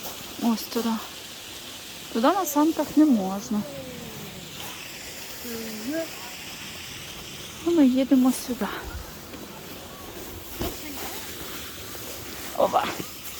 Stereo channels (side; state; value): both; identical; correlation 1.00